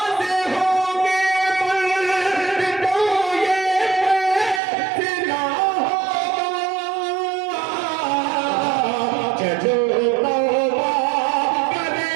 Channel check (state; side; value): drops out; left; at 4.6 s